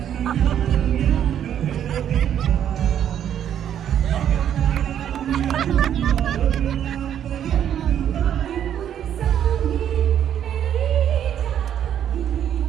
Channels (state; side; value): quieter; left; 9.8 dB